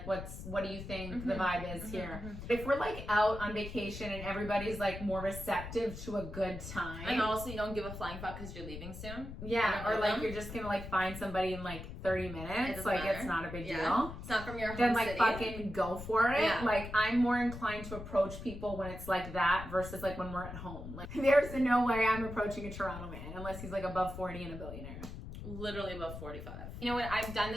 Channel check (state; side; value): noise; left; rumble, 10 dB below the sound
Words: what do you think the vibe is here? If we're like out on vacation and everybody's like more receptive to a good time. And also you don't give a flying fuck because you're leaving soon. Yeah, or like you're just gonna like find somebody in like 30 minutes. Like matter. it's not a big deal. It's not from your home Then like city. fucking go for it. Yeah. Like I'm more inclined to approach people when it's like that versus like when we're at home. Like there's no way I'm approaching a Toronto man unless he's like above 40 and a billionaire. Literally above 45. You know what? I've done